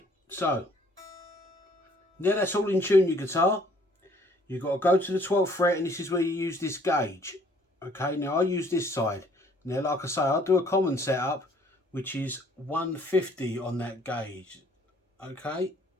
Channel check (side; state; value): both; normal; correlation 0.60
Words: so now that's all in tune, your guitar. You've got to go to the 12th fret, and this is where you use this gauge. Okay, now I use this side. Now, like I say, I'll do a common setup, which is 150 on that gauge. Okay,